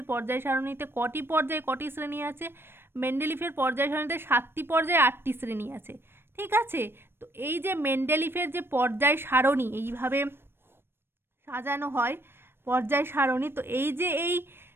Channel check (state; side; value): late; left; 0.11 ms